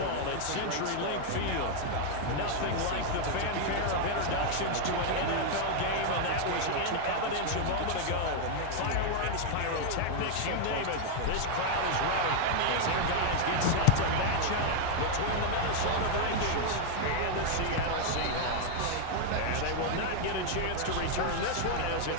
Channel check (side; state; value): both; different; correlation 0.00